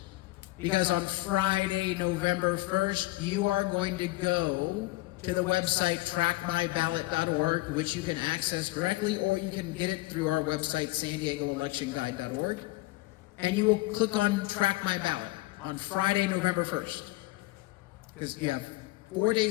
Because on Friday, November 1st, you are going to go to the website trackmyballot.org, which you can access directly, or you can get it through our website, san-diego-electionguide.org, and you will click on Track My Ballot on Friday, November 1st, because you have 4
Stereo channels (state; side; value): quieter; right; 20.0 dB